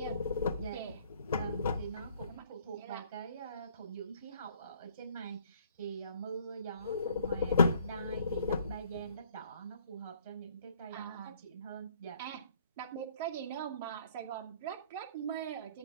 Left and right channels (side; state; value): both; inverted; correlation -0.61